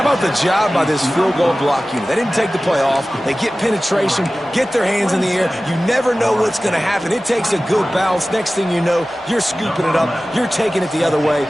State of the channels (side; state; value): both; normal; correlation 0.96